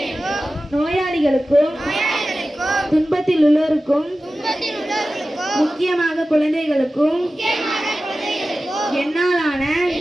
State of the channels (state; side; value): normal; both; correlation 0.95